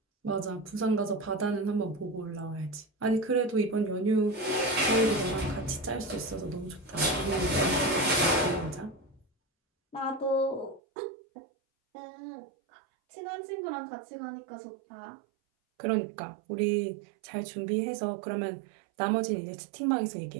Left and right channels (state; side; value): drops out; left; at 10.8 s